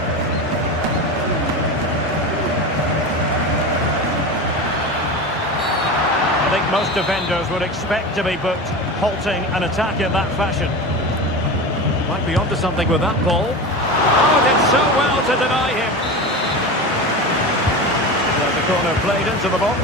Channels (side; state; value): both; normal; correlation 0.26